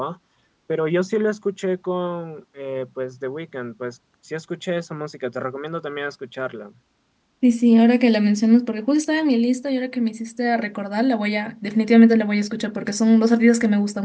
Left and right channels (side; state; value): both; identical; correlation 1.00